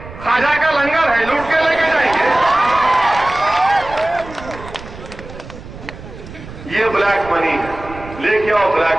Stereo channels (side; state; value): right; noise; rumble, 15 dB below the sound